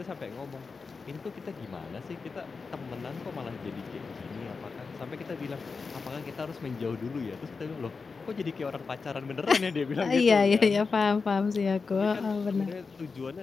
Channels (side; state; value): right; quieter; 4.7 dB